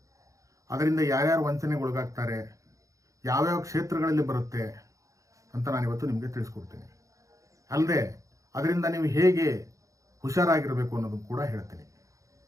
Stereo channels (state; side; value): late; left; 0.16 ms